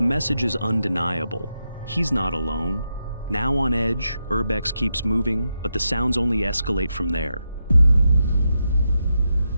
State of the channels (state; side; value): inverted; both; correlation -0.85